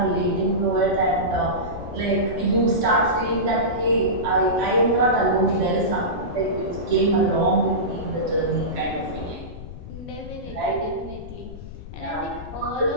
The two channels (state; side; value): noise; left; rumble, 12 dB below the sound